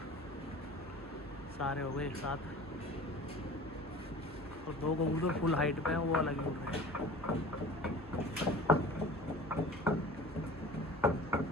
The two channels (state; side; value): normal; both; correlation 0.40